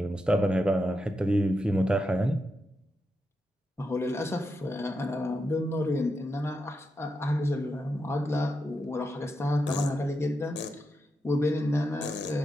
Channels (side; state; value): both; normal; correlation 0.86